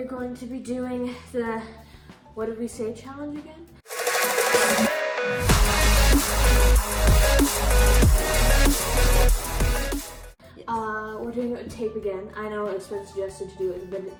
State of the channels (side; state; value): both; identical; correlation 1.00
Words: going to be doing the, what did we say, challenge again? We're doing it with tape again. I know it's been suggested to do it with a